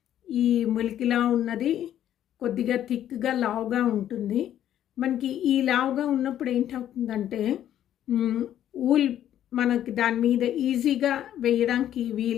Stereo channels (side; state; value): right; quieter; 11.2 dB